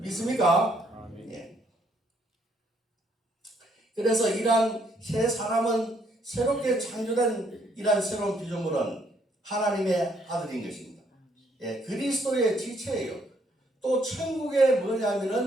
예. 그래서 이러한 새 사람은 새롭게 창조된 이러한 새로운 피조물은 하나님의 아들인 것입니다. 예, 그리스도의 지체예요. 또 천국의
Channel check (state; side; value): normal; both; correlation 0.69